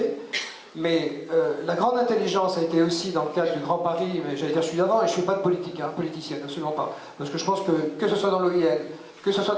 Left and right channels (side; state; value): both; identical; correlation 1.00